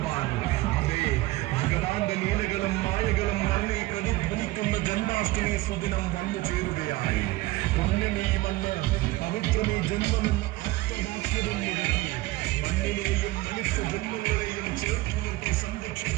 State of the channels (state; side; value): quieter; left; 19.2 dB